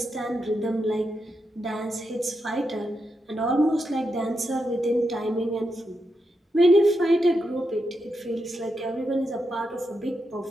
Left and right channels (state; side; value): normal; both; correlation 0.85